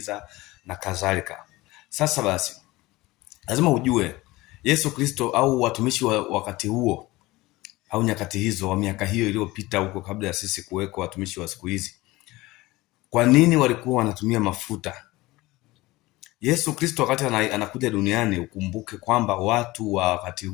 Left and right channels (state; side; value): quieter; right; 19.9 dB